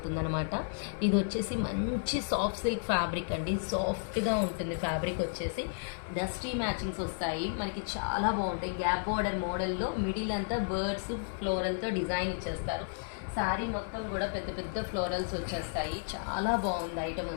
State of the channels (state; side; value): silent; right; 56 dB below the other